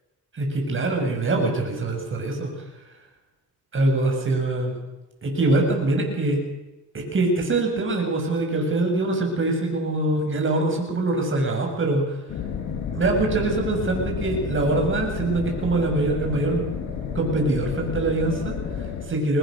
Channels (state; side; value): normal; both; correlation 0.35